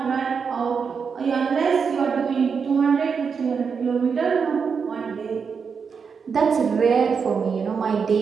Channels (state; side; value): quieter; left; 5.9 dB